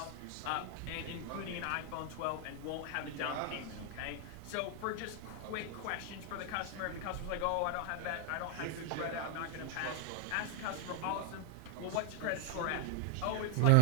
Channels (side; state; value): both; different; correlation 0.00